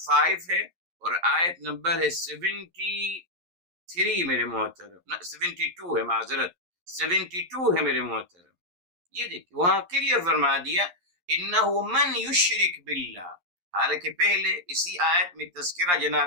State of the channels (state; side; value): late; left; 11 ms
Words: ہے اور آیت نمبر ہے 73 میرے محترم، 72 ہے، معذرت 72 ہے میرے محترم۔ یہ دیکھیے وہاں کلیئر فرما دیا انہ من یشرک باللہ، حالانکہ پہلے اسی آیت میں تذکرہ